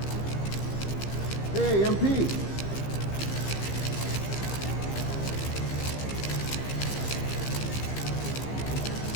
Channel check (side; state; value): right; late; 15 ms